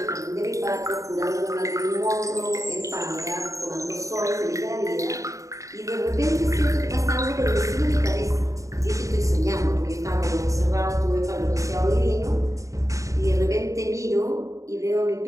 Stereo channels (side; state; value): left; late; 0.16 ms